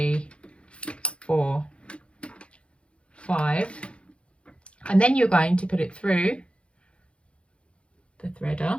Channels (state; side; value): late; right; 0.059 ms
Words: 4, 5, and then you're going to put it through the threader,